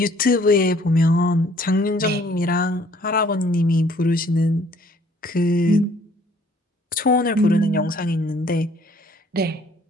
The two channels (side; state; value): both; normal; correlation 0.60